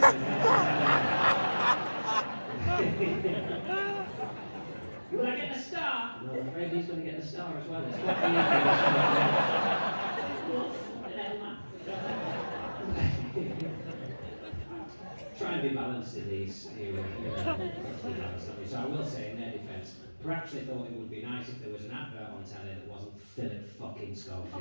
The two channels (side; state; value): both; inverted; correlation -1.00